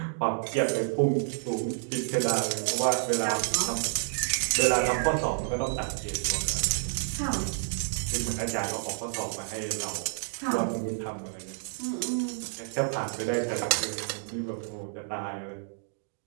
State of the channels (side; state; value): left; silent; digital silence